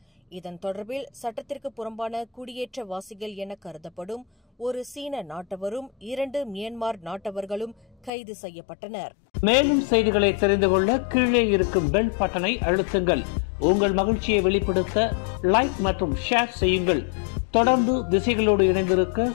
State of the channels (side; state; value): right; drops out; at 8.1 s